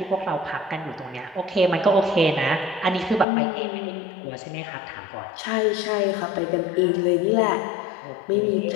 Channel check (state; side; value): drops out; right; at 3.2 s